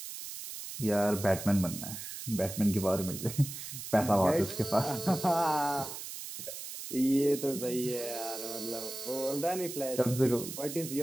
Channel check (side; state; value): right; noise; hiss, 9 dB below the sound